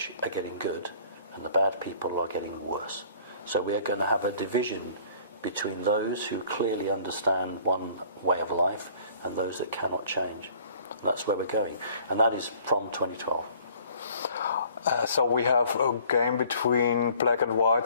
are getting good, and the bad people are getting worse. So we are going to have a division between those who clearly understand one way of life and those that cannot change. And that's where we're going. And that is from 2012. So we have a game between black and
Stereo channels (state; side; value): inverted; both; correlation -0.54